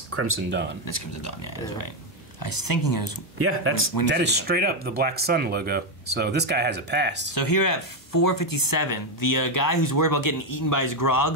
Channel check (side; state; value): both; normal; correlation 0.06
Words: Crimson Dawn. That's Crimson Dawn. Yeah, that's right. I was thinking it was... Yeah, that is straight up the Black Sun logo. So this guy has a past. So here at 457, the guy who's worried about getting eaten by his